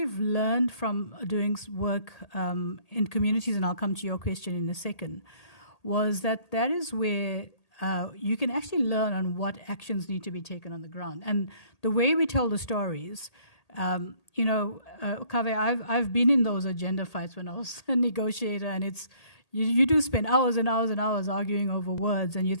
learned from doing work in communities, and I'll come to your question in a second, was that is where you can actually learn on what actions need to be taken on the ground. And the way we tell the stories, you know, Kaveh, I've been in those agenda fights when I was a negotiator, and it's you do spend hours and hours and hours arguing over words, and you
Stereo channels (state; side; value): late; right; 1.8 ms